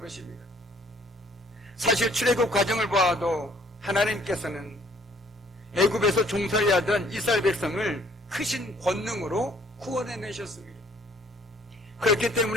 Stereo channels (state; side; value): normal; both; correlation 0.61